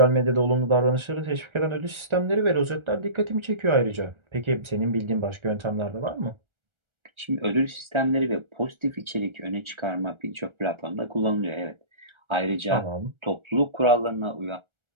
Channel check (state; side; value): late; left; 1.4 ms